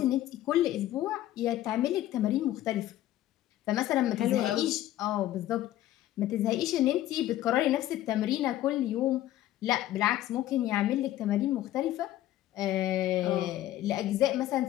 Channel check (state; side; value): quieter; right; 13.8 dB